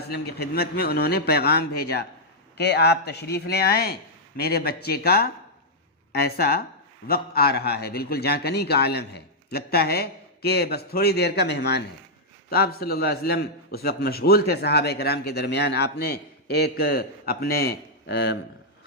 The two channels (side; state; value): both; normal; correlation -0.06